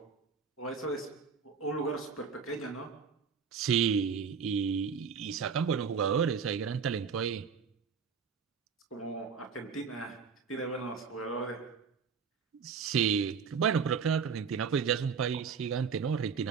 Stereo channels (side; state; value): left; quieter; 6.1 dB